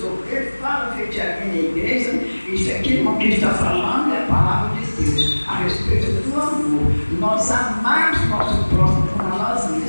obreiros, falo de alguém na igreja. Isso aqui, irmão, que está falando é a palavra de Deus a respeito do amor. Nós amamos nosso próximo como a nós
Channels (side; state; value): both; inverted; correlation -1.00